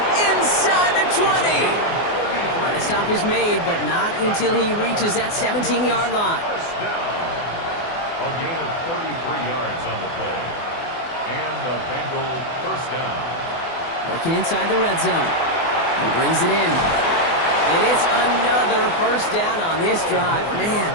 inside the 20. And a stop is made, but not until he reaches that 17-yard line. First down. A gain of 33 yards on the play. And the Bengal first down. Working inside the red zone. He brings it in. And it's another first down on this drive. Man,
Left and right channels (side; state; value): right; late; 24 ms